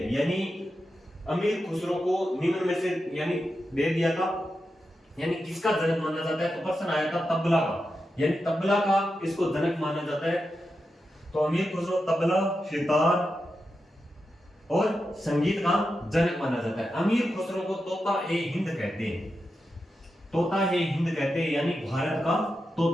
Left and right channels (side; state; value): both; normal; correlation 0.89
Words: यानी अमीर खुसरो को निम्न में से यानी दे दिया था, यानी किसका जनक माना जाता है? तो प्रश्न आया था तबला का, यानी तबला का इसको जनक माना जाता है। तो अमीर खुसरो तबला, सितार और संगीत का जनक माना जाता है। अमीर खुसरो को तोता ए हिंद कहते हैं। तोता ए हिंद कहते हैं, यानी भारत का